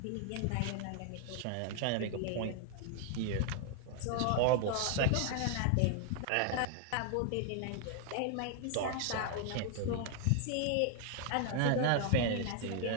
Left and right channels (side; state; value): both; different; correlation 0.00